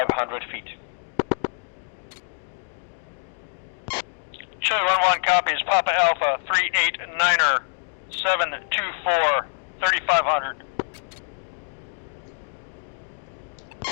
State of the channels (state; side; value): silent; right; 61 dB below the other